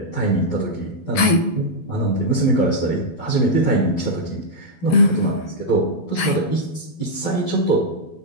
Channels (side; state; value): right; late; 12 ms